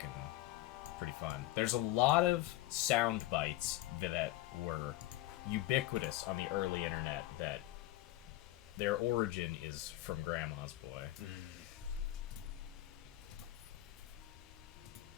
pretty fun. There's a lot of sound bites that were ubiquitous on the early internet that their origin is from Grandma's Boy.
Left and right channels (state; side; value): quieter; right; 15.7 dB